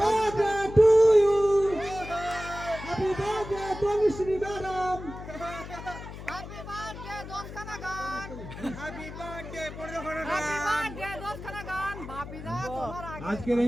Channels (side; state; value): left; noise; hum, 11 dB below the sound